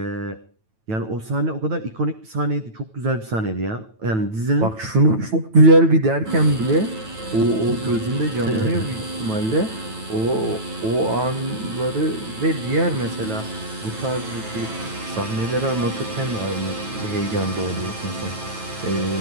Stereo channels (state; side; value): late; left; 9.2 ms